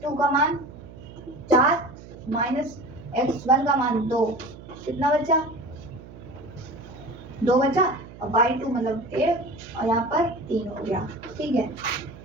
का मान 4 - x1 का मान 2, कितना बचा? 2 बचा और y2 मतलब 1 और यहाँ पर 3 हो गया, ठीक है।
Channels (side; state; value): right; noise; hum, 17 dB below the sound